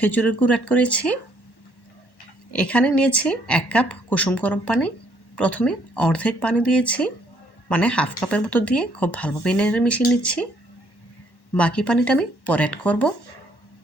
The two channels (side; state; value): right; late; 1.1 ms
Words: গুড় অ্যাড করেছি। এখানে নিয়েছি 1 কাপ কুসুম গরম পানি। প্রথমে অর্ধেক পানি দিয়েছি, মানে হাফ কাপের মতো দিয়ে খুব ভালোভাবে নেড়ে মিশিয়ে নিচ্ছি। বাকি পানিটা আমি পরে অ্যাড করব।